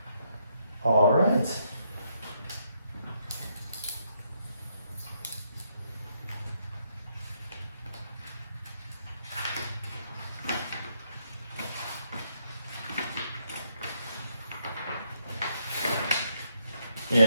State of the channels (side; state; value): both; inverted; correlation -0.76